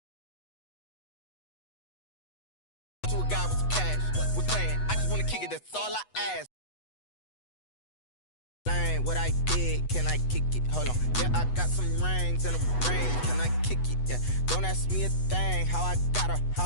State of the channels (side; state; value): right; late; 8.1 ms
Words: To a guy with some cash, was playing, I just wanna kick it, that's all I ask. What I did, can I kick it? Hold on, yeah, I got some rings and a ring, can I kick it? Yeah, don't ask me a thing, how I got her, how